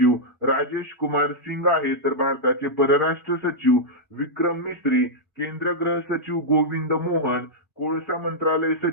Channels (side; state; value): both; normal; correlation -0.08